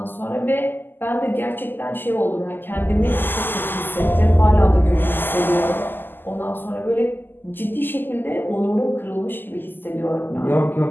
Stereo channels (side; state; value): right; late; 0.093 ms